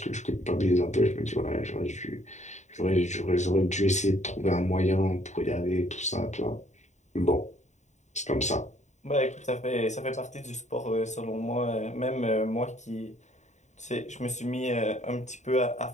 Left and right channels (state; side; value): late; right; 0.34 ms